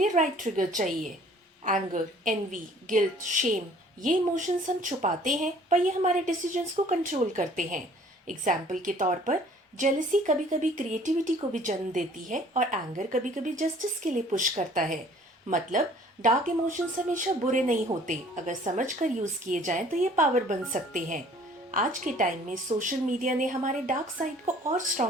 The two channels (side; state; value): both; normal; correlation 0.54